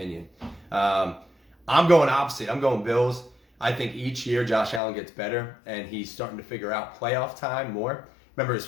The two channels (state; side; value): drops out; right; at 4.8 s